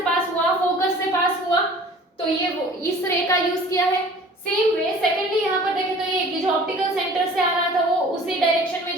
पास हुआ, फोकस से पास हुआ, तो ये वो इस रे का यूज किया है। सेम वे सेकेंडली यहाँ पर देखें तो ये जो ऑप्टिकल सेंटर से आ रहा था वो उसी डायरेक्शन में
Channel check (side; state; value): both; normal; correlation 0.47